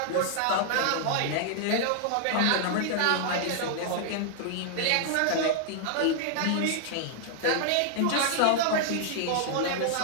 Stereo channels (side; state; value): both; different; correlation 0.00